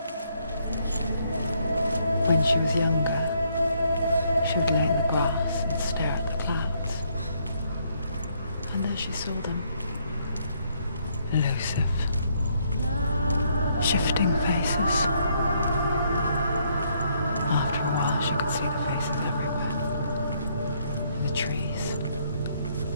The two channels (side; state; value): both; inverted; correlation -0.71